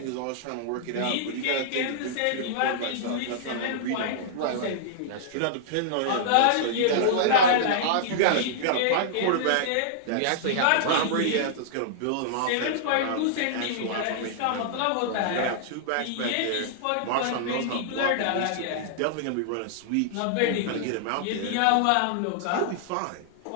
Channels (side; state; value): both; different; correlation -0.01